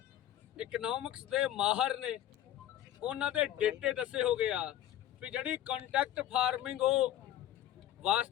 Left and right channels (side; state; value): right; quieter; 12.1 dB